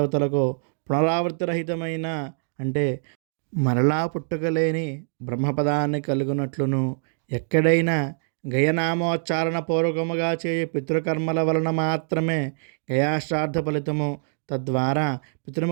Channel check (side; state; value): left; silent; digital silence